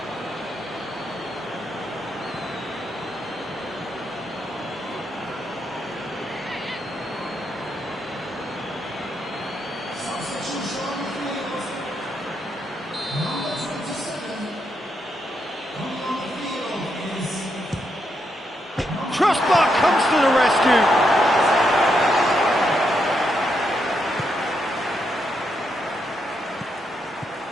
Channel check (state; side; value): normal; both; correlation 0.80